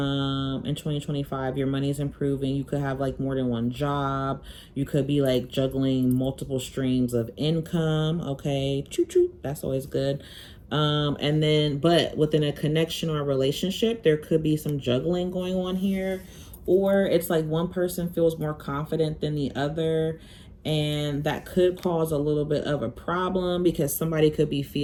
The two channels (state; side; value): identical; both; correlation 1.00